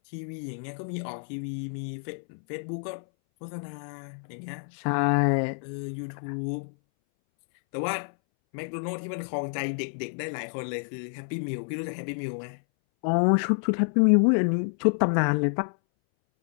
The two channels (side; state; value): right; silent; 59 dB below the other